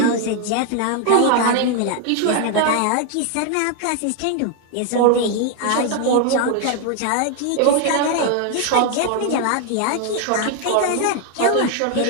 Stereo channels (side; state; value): both; different; correlation 0.00